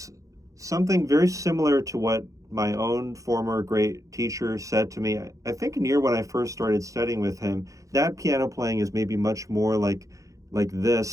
something very similar to what my own former great teacher said to me. I think near when I first started studying with him, that piano playing is maybe much more like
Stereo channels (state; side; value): late; left; 0.16 ms